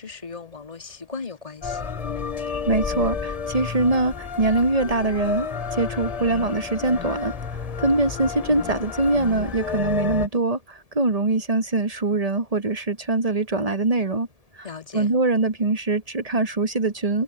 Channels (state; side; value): late; left; 1.7 ms